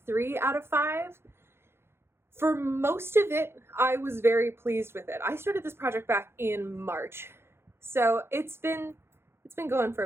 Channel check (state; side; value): late; left; 0.12 ms